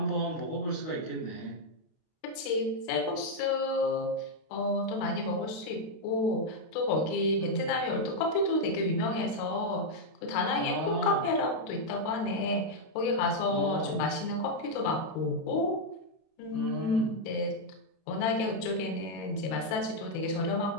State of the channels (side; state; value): right; late; 32 ms